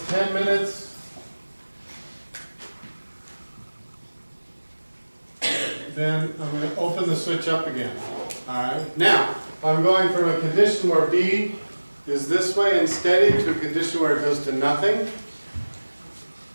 10 minutes, then I'm going to open the switch up again. Alright, now, I'm going from a condition where B is this way and steady to a condition where it goes to nothing.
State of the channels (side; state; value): both; inverted; correlation -1.00